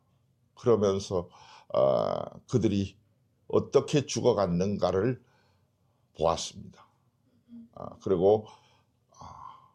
그러면서 그들이 어떻게 죽어갔는가를 보았습니다. 그리고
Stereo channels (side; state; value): both; identical; correlation 1.00